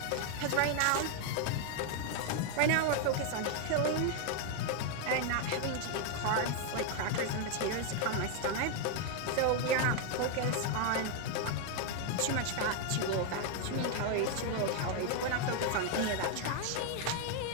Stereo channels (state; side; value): different; both; correlation 0.01